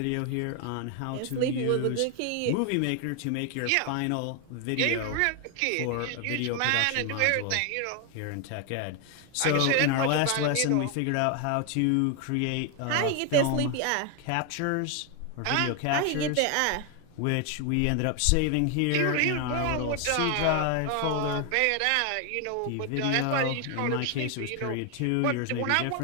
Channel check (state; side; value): different; both; correlation 0.01